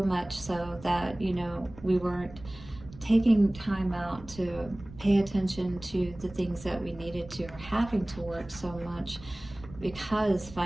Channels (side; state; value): right; noise; rumble, 18 dB below the sound